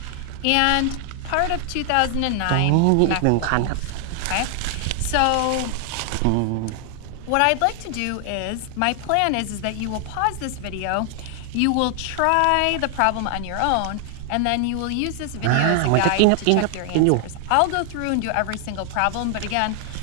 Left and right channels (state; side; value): different; both; correlation 0.00